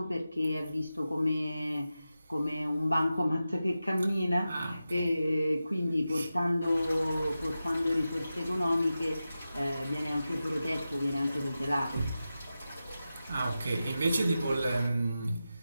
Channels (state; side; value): inverted; both; correlation -0.92